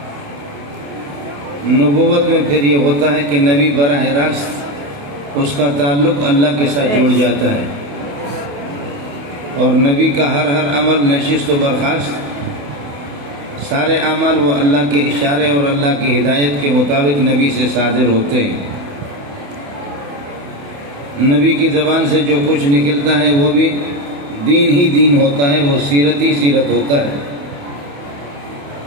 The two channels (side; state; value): left; late; 28 ms